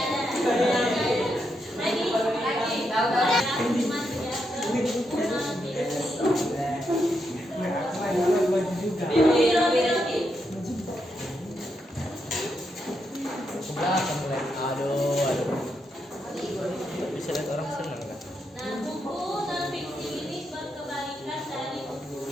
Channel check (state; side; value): normal; both; correlation 0.82